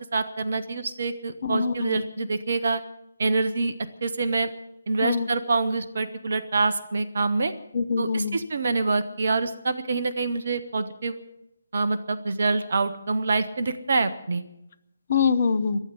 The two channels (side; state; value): both; inverted; correlation -0.83